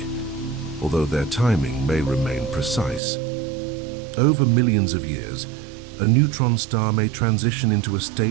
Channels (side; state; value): left; drops out; at 3.0 s